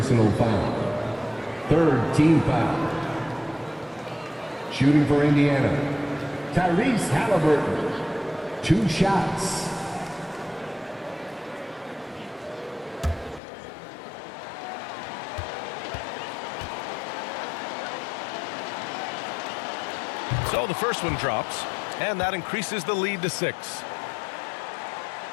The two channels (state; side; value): drops out; right; at 13.4 s